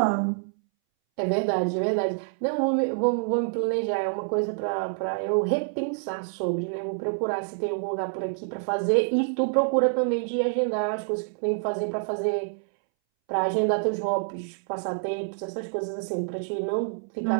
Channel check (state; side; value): silent; left; 60 dB below the other